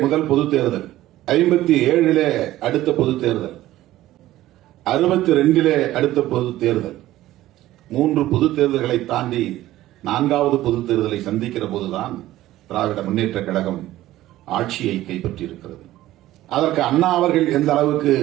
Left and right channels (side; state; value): left; quieter; 15.1 dB